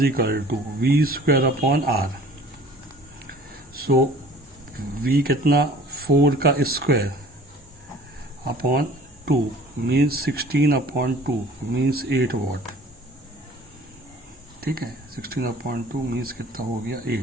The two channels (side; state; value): both; normal; correlation 0.49